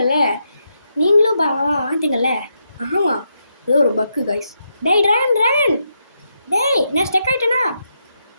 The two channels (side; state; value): both; inverted; correlation -0.82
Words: நீங்களும் வாந்தீங்கல்ல? ஆமாம், ஏதோ ஒரு பக்கு கைஸ். ட்ராகன். நான் ஸ்டெக் ஆகிட்டேனா?